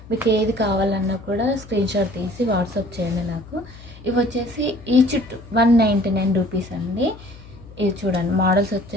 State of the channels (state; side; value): noise; left; hum, 19 dB below the sound